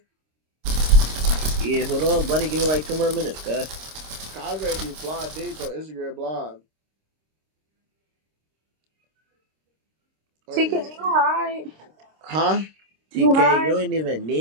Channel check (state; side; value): late; left; 26 ms